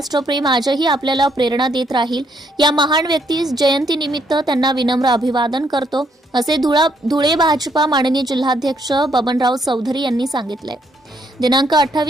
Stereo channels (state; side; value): normal; both; correlation 0.72